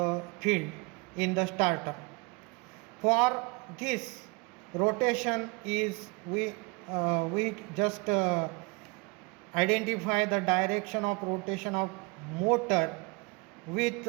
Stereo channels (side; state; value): left; quieter; 28.3 dB